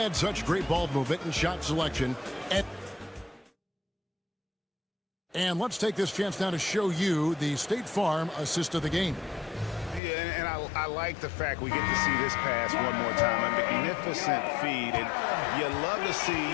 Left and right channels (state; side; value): drops out; right; at 10.0 s